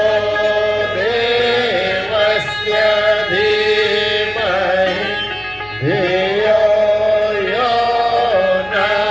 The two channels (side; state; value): left; noise; hum, 24 dB below the sound